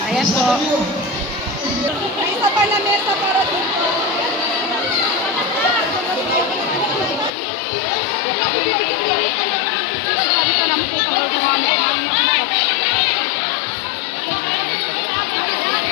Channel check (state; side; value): drops out; right; at 7.3 s